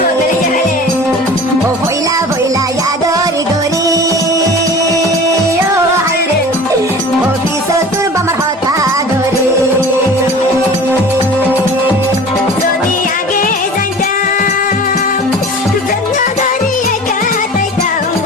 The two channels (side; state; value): both; normal; correlation 0.40